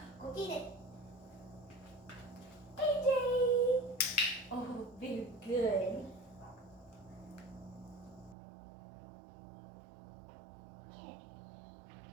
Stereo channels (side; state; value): left; drops out; at 8.3 s